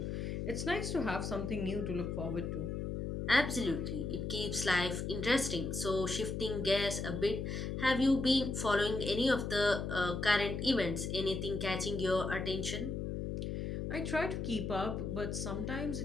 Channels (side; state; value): left; noise; hum, 3 dB below the sound